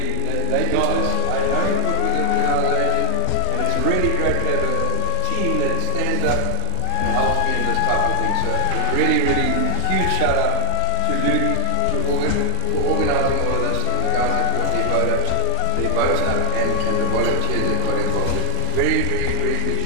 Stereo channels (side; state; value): both; different; correlation 0.01